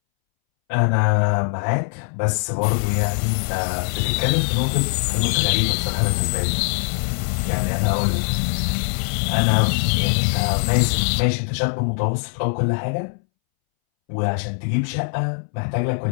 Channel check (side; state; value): right; silent; 63 dB below the other